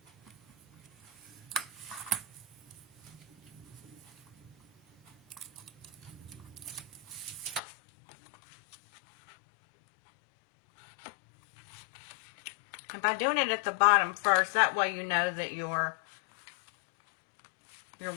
And by doing it at the bottom first, that way you know that your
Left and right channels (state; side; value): drops out; right; at 7.6 s